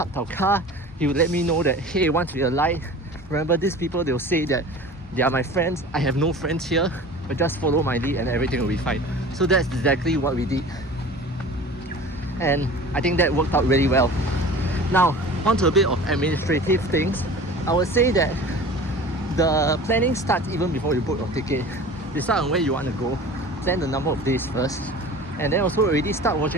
our car, he would let me know that, hey, once we alight, remember these people, they'll say that they are my friends. I have no friends here, but just follow my lead and everything will be fine. So that's exactly what we did, and I think that worked out really well. Now, onto a bit of administrative things. I would say that the planning starts even before you book your ticket. Decide on where you want to go, plan the number of days first, and then also already start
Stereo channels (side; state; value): both; normal; correlation 0.40